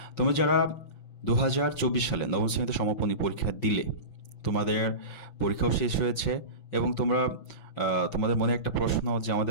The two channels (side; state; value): right; late; 5.9 ms